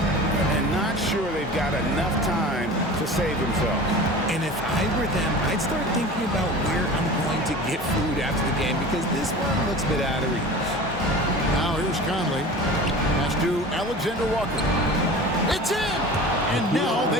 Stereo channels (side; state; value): both; normal; correlation 0.37